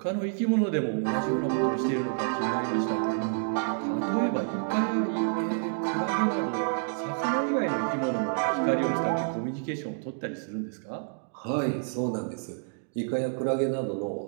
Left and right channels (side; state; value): left; silent; digital silence